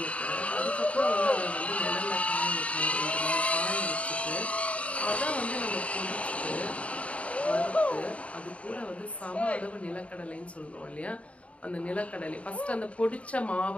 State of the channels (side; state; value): right; late; 0.064 ms